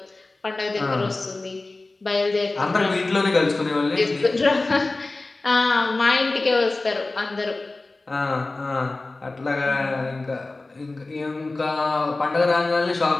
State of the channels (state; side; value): quieter; right; 3.2 dB